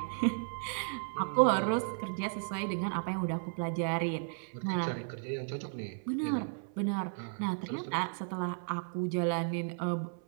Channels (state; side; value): silent; left; 55 dB below the other